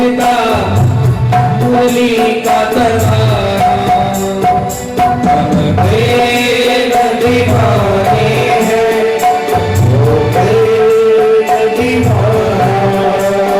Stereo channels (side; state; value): both; identical; correlation 1.00